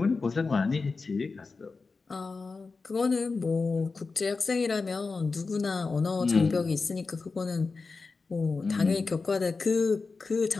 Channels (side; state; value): right; quieter; 4.2 dB